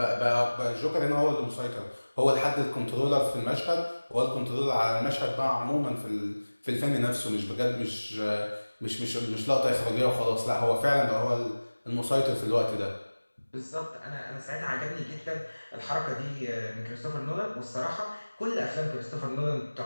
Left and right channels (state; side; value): inverted; both; correlation -1.00